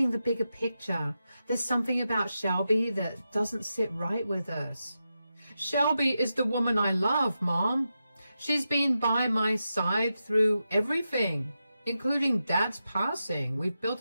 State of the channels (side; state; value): both; inverted; correlation -0.89